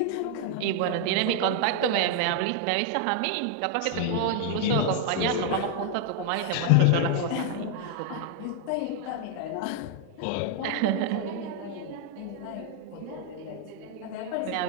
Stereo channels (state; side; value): different; both; correlation 0.00